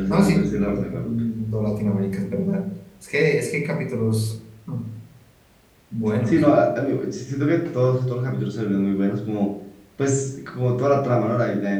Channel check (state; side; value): identical; both; correlation 1.00